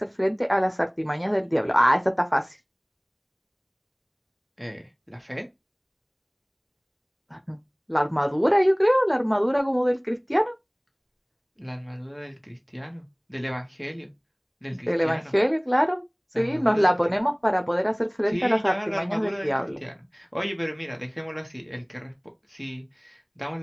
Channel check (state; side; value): identical; both; correlation 1.00